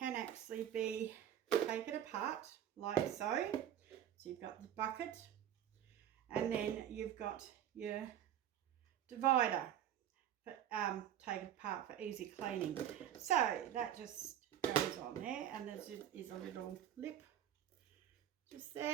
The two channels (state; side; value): quieter; left; 10.6 dB